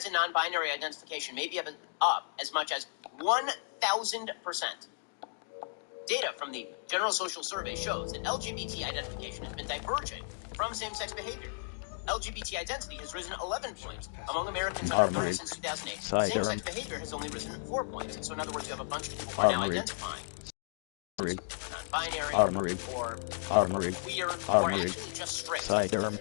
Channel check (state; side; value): silent; right; digital silence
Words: and non-binary identification may be up as much as 1,000%. Data from the General Social Survey shows that LGBT identification has been diverging from same-sex behavior. LGBT identity has risen 11 points among Americans under 30 since 2008. Same-sex behavior has only risen 4 points. So in other words, you have a bunch of people who are now identifying non-binary or queer or actually just straight. For